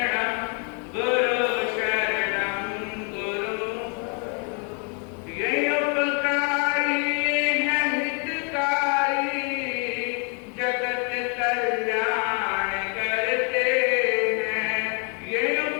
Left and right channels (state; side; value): quieter; right; 37.6 dB